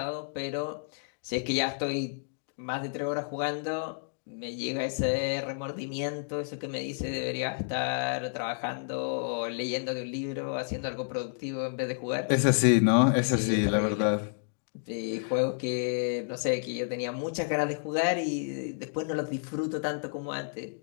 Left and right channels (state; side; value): silent; right; digital silence